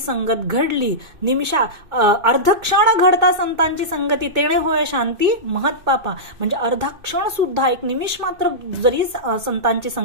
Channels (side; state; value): left; late; 2.6 ms